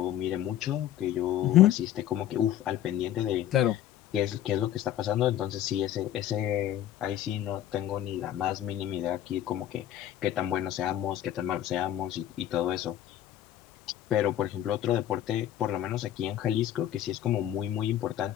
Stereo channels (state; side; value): quieter; right; 11.8 dB